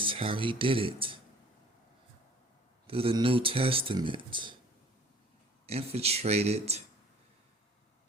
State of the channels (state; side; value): normal; both; correlation 0.51